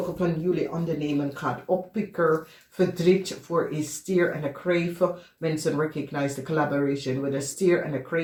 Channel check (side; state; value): both; identical; correlation 1.00